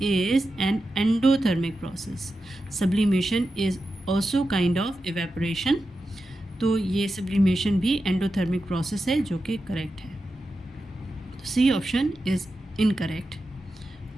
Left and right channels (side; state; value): both; normal; correlation 0.91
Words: is an endothermic process. Sublimation is also kind of evaporation. तो ये सब्लिमेशन भी एंडोथर्मिक प्रोसेस है, जो कि करेक्ट है। तो C option is incorrect